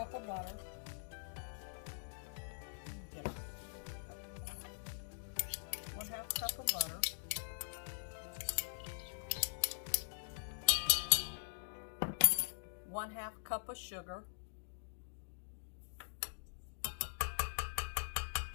of butter. 1/2 cup of butter. 1/2 cup of sugar.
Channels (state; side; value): silent; right; digital silence